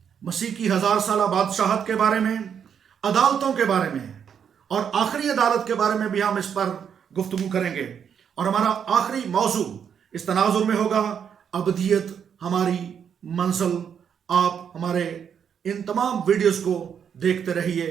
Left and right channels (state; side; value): quieter; left; 7.8 dB